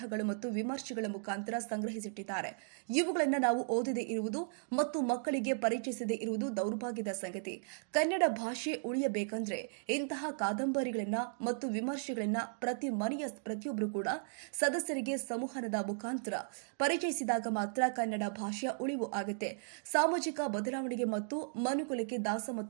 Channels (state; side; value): silent; left; digital silence